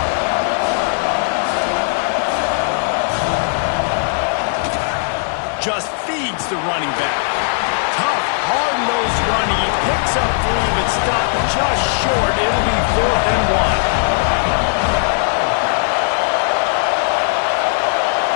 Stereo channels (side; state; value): right; silent; 57 dB below the other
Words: Just feeds the running back. Tough, hard-nosed running. He picks up 3, but stopped just short. It'll be 4th and 1.